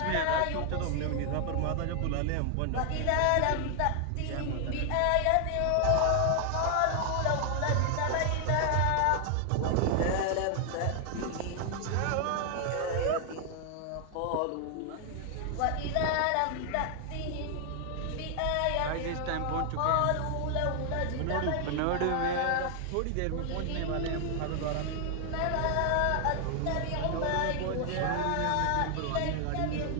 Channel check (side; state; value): both; different; correlation 0.00